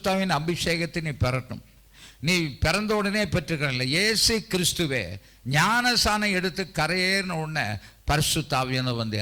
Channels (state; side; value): identical; both; correlation 1.00